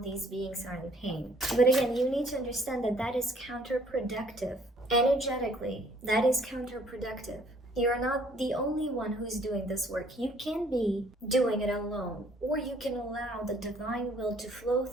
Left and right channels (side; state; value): both; normal; correlation 0.61